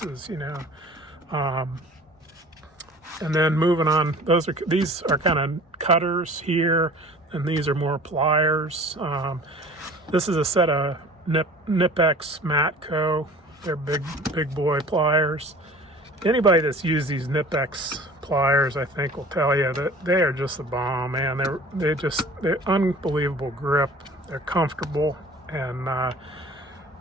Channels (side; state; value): both; normal; correlation 0.45